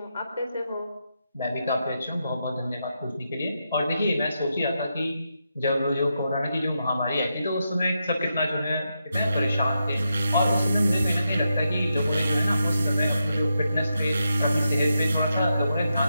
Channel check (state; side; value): inverted; both; correlation -0.85